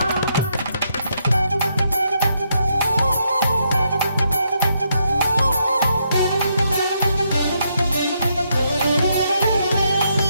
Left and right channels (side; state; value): both; inverted; correlation -0.77